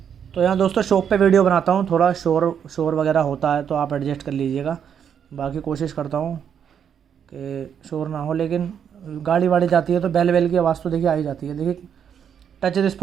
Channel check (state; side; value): quieter; left; 8.1 dB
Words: तो यहाँ दोस्तों शॉप पे वीडियो बनाता हूँ, थोड़ा शोर शोर वगैरह होता है तो आप एडजस्ट कर लीजिएगा। बाकी कोशिश करता हूँ कि शोर ना हो, लेकिन गाड़ी वाड़ी जाती है तो बैल बैल की आवाज़ तो देखिए आ ही जाती है। देखिए टच